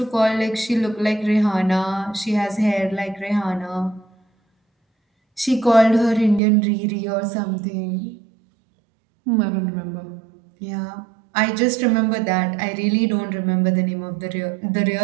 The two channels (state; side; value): drops out; left; at 6.4 s